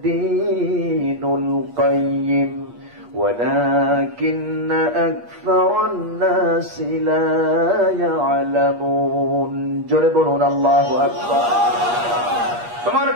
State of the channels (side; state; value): left; late; 8.4 ms